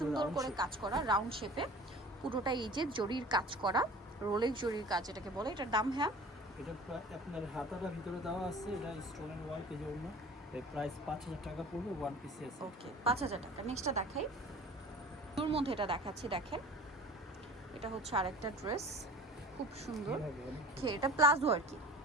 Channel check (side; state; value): both; normal; correlation 0.42